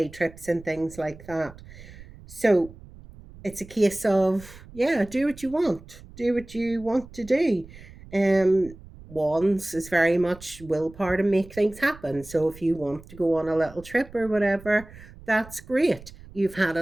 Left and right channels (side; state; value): right; noise; rumble, 19 dB below the sound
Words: trips and things like that. So it's a case of, yeah, do what you want, to do. Wands is very much willpower to make things happen. So if you want to go on a little trip or whatever, that's great. you've had